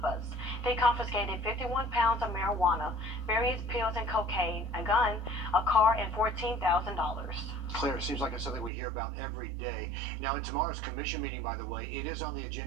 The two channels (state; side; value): drops out; left; at 8.7 s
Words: busts. They confiscated 51 pounds of marijuana, various pills and cocaine, a gun, a car, and $14,000. Claire, it seems like it's something we hear about every day. Now, in tomorrow's commission meeting, by the way, it is on the